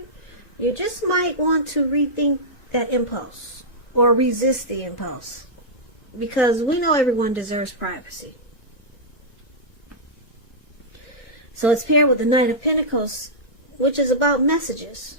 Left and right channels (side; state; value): right; late; 2.0 ms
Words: you just might want to rethink that impulse or resist the impulse. Because we know everyone deserves privacy. So it's paired with the Knight of Pentacles, which is about messages.